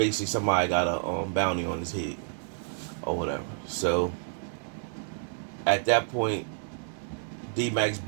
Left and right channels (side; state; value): left; silent; 58 dB below the other